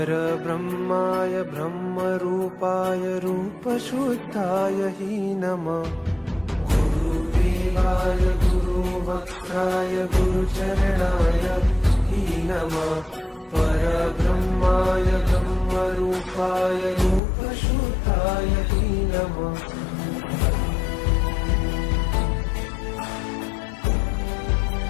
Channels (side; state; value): right; drops out; at 17.2 s